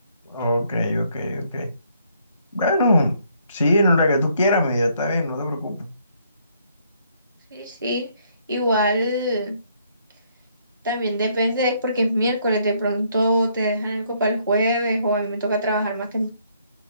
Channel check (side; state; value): both; inverted; correlation -0.69